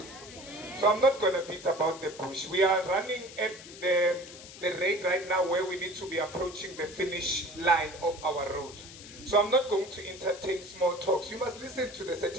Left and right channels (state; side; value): noise; left; hiss, 16 dB below the sound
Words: So I'm not going to beat about the bush. We are running at the rate right now where we need to be approaching the finish line of our road. So I'm not going to entertain small talks. You must listen to the